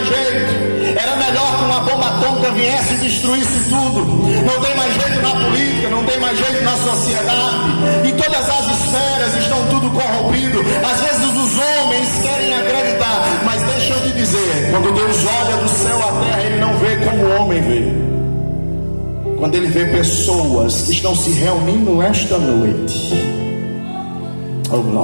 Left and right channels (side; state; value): both; inverted; correlation -1.00